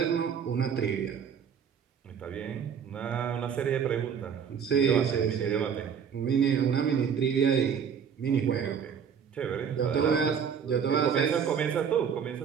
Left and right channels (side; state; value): left; quieter; 7.3 dB